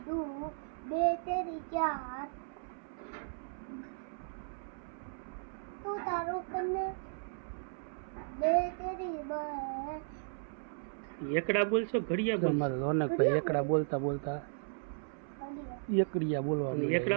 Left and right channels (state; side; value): silent; left; 54 dB below the other